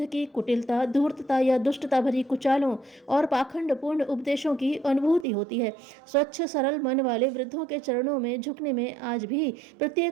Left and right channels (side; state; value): left; drops out; at 5.2 s